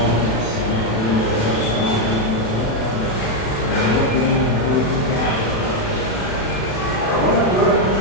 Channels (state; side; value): late; right; 36 ms